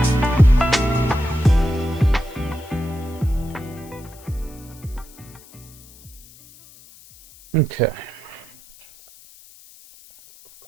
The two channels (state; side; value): noise; left; hiss, 23 dB below the sound